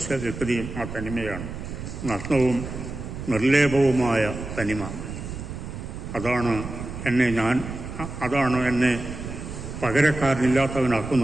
വ്യക്തിയും ആ തനിമയാണ്. നഗ്നവും നിർലേപവുമായ തനിമ. അതാണ് എന്നെ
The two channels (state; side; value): noise; right; rumble, 8 dB below the sound